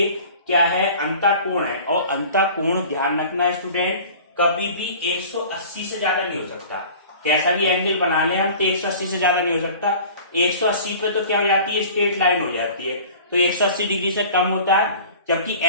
क्या है अंतःकोण है, और अंतःकोण ध्यान रखना है स्टूडेंट कभी भी 180 से ज्यादा नहीं हो सकता। कैसा भी एंगल बना ले हम तो 180 से ज्यादा नहीं हो सकता। 180 पे तो क्या हो जाती है स्ट्रेट लाइन हो जाती है, तो 180 डिग्री से कम होता है जबकि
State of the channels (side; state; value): both; inverted; correlation -0.43